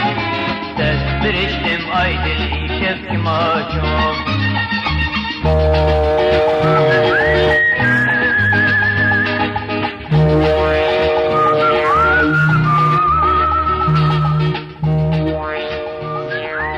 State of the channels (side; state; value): both; identical; correlation 1.00